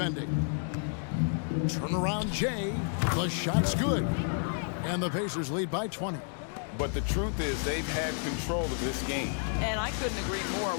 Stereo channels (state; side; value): silent; right; 57 dB below the other